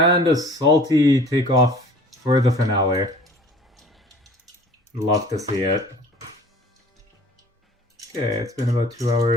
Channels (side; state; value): both; normal; correlation 0.48